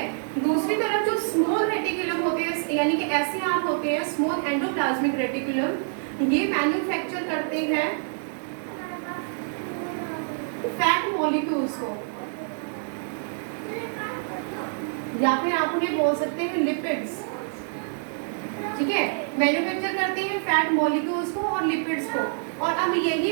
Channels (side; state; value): left; silent; 61 dB below the other